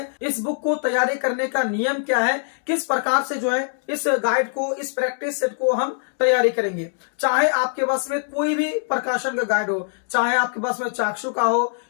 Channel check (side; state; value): right; silent; digital silence